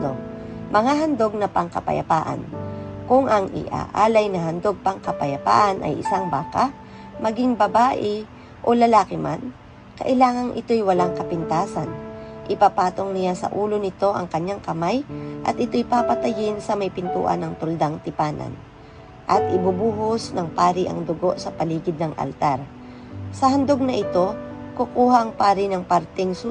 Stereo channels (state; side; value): identical; both; correlation 1.00